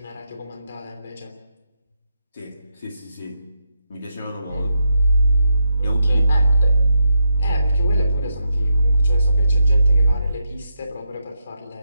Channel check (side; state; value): both; inverted; correlation -0.82